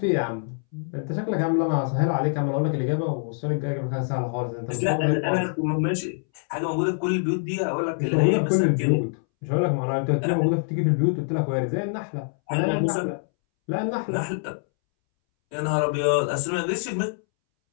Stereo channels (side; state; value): right; silent; 62 dB below the other